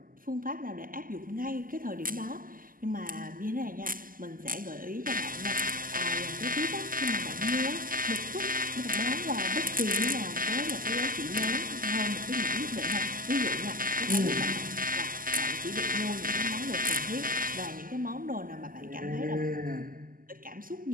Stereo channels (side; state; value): left; late; 0.41 ms